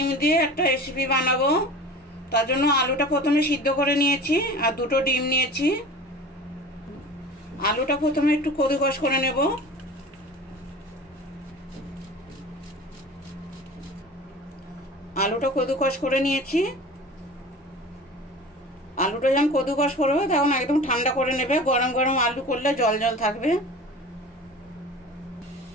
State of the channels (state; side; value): normal; both; correlation 0.38